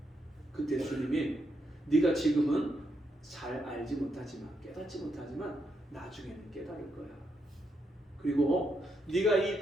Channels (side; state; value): both; normal; correlation 0.80